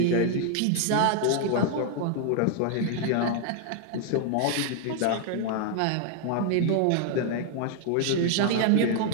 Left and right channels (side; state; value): both; different; correlation 0.00